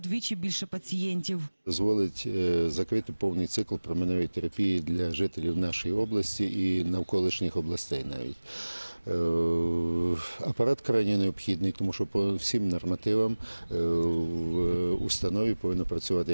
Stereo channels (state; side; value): inverted; both; correlation -1.00